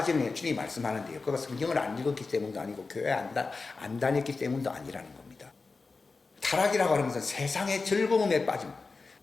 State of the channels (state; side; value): quieter; right; 4.1 dB